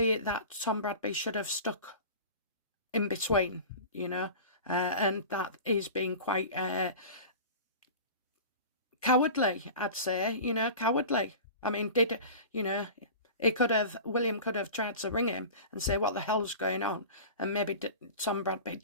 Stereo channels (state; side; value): inverted; both; correlation -0.35